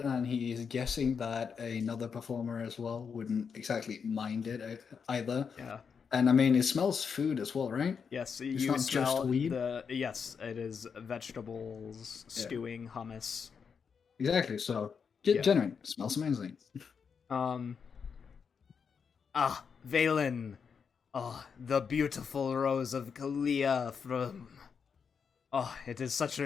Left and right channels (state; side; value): quieter; right; 6.3 dB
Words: and he's guessing that another performer as well wouldn't exactly mind it either. Yeah. And I mean, it smells food as well, right? Yes, It's you not just smell weed? yes, it is vegetables, stewing, hummus. Exactly. So, Yeah. genuine. It smells amazing. Valen. Oh, the beautiful rose of Kalia from Oh, it is such